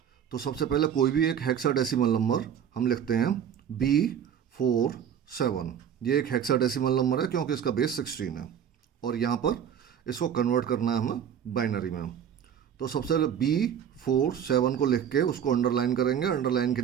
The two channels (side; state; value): left; quieter; 8.7 dB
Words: तो सबसे पहले कोई भी एक हेक्साडेसिमल नंबर हम लिखते हैं B47। ये एक हेक्साडेसिमल नंबर है क्योंकि इसका बेस 16 है और यहाँ पर इसको कन्वर्ट करना है हमें बाइनरी में। तो सबसे पहले B47 को लिख के उसको अंडरलाइन करेंगे। अंडरलाइन के